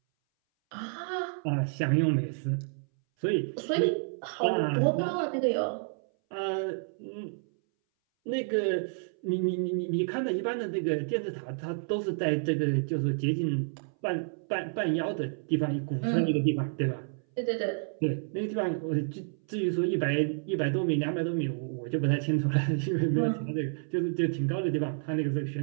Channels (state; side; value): silent; left; 58 dB below the other